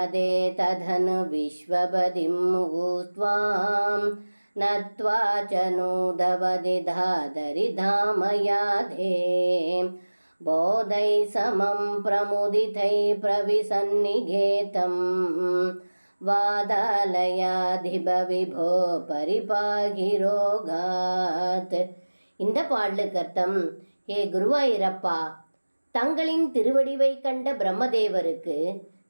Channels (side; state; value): both; inverted; correlation -1.00